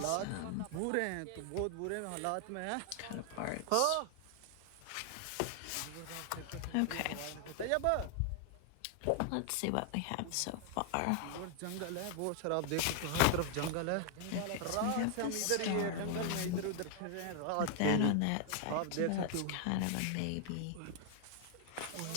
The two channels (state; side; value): different; both; correlation 0.00